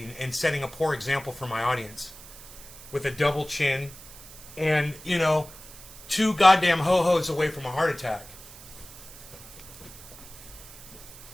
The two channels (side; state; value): right; noise; hiss, 17 dB below the sound